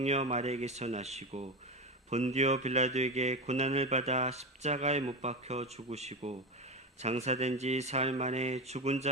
마리아에게서 나시고 본디오 빌라도에게 고난을 받아 십자가에 못 박혀 죽으시고 장사된 지 사흘 만에 죽은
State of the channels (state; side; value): normal; both; correlation 0.19